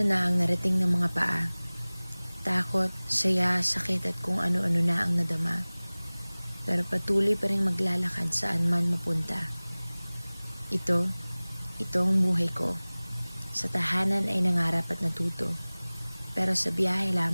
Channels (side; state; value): both; inverted; correlation -1.00